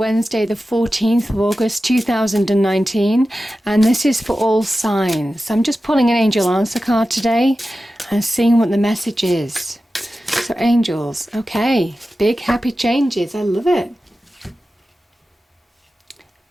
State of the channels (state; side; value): normal; both; correlation 0.93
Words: the 14th of August 2019, and this is for all signs. I'm just pulling an angel answer card today and seeing what the message is. So angels, okay, big happy changes, I love it.